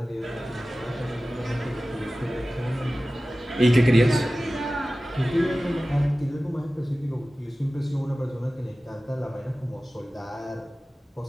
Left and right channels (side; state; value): both; normal; correlation 0.96